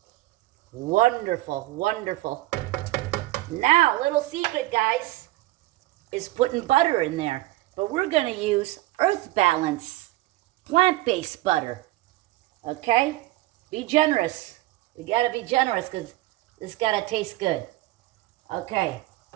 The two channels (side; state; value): left; quieter; 18.1 dB